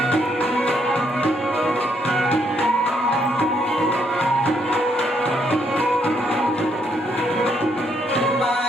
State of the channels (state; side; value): normal; both; correlation 0.73